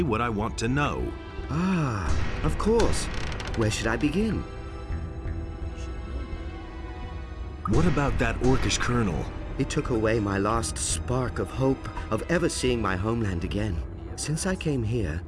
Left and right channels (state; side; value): identical; both; correlation 1.00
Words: what I want to know. Ah, of course. Where should I begin? What about that orcish colonel? It took away my last spark of hope of ever seeing my homeland again. Since I came here,